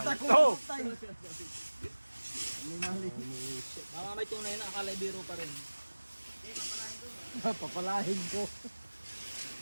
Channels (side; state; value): both; inverted; correlation -1.00